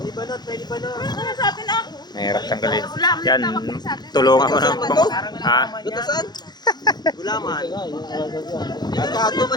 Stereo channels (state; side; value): late; right; 0.20 ms